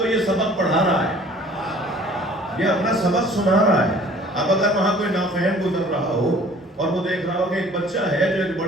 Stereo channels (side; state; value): both; normal; correlation 0.51